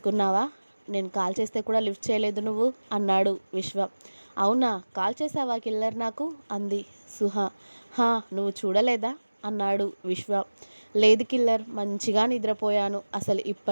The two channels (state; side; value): inverted; both; correlation -1.00